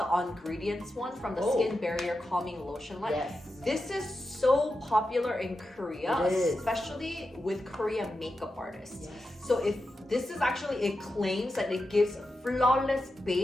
Ongredients one from the Skin Barrier Calming Lotion line. Yes. This is so popular in Korea, It is. especially with Korean makeup artists. Yes. So if this is actually, it claims that it gives flawless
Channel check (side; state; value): both; normal; correlation 0.90